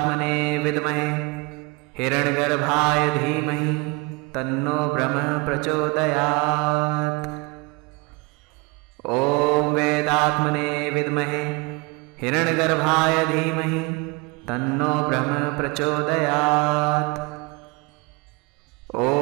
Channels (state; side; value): quieter; left; 27.9 dB